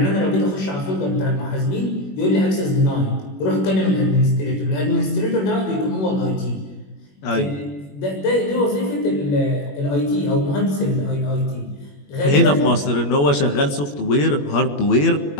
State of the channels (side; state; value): right; late; 21 ms